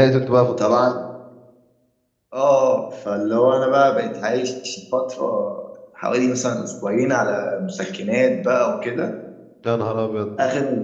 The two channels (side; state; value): both; identical; correlation 1.00